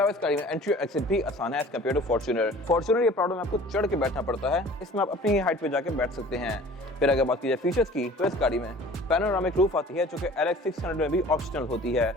इस गाड़ी में एंट्री और एक्सिट भी आसान है as compare to Fortuner. Fortuner ये प्राडो में आपको चढ़ के बैठना पड़ता है, इसमें आप अपनी हाइट पे जाके बैठ सकते हैं। फिर अगर बात की जाए फीचर्स की तो इस गाड़ी में पैनोरामिक रूफ आती है जो कि LX 600 में भी ऑप्शनल होती है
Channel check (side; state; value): both; normal; correlation 0.46